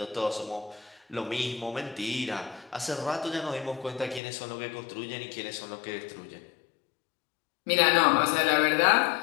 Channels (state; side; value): drops out; right; at 4.2 s